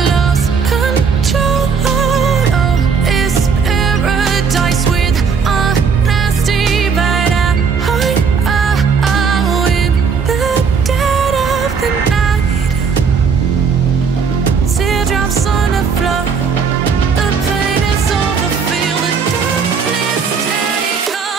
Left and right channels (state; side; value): quieter; left; 5.9 dB